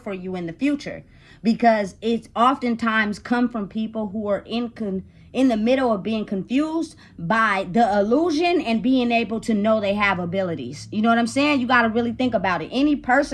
for you in the future, because it's oftentimes come from people who are in the middle of being confused by the illusion and being able to know they have abilities. You know what I'm saying? You got to really think about it. Any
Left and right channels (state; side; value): identical; both; correlation 1.00